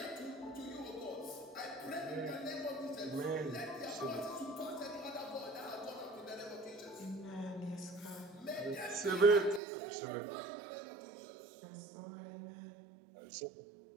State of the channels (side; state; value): left; drops out; at 9.6 s